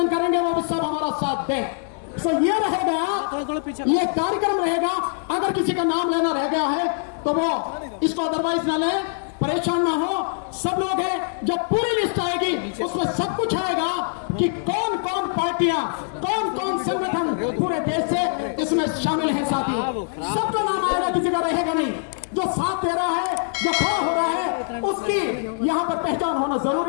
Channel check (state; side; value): silent; right; digital silence